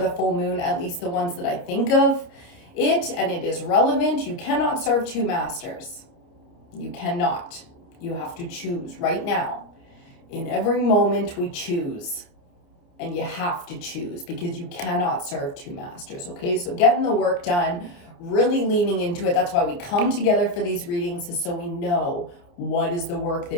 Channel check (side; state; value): right; late; 29 ms